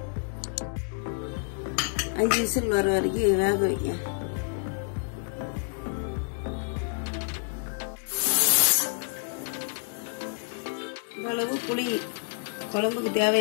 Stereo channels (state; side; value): silent; right; 59 dB below the other